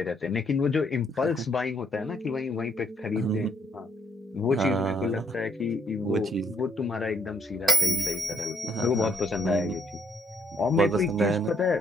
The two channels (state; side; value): normal; both; correlation 0.71